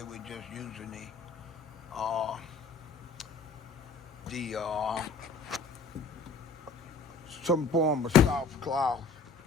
with just using the some form of soft cloth.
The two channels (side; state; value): right; quieter; 4.4 dB